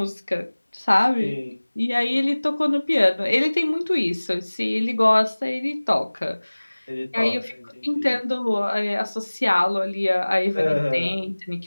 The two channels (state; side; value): inverted; both; correlation -1.00